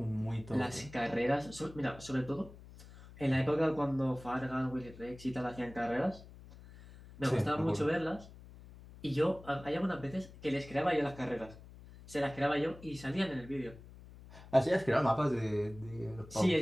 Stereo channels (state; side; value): noise; left; hum, 18 dB below the sound